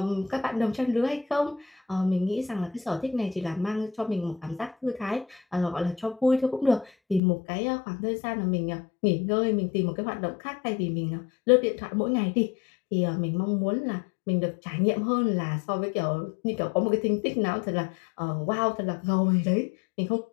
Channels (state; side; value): drops out; right; at 7.2 s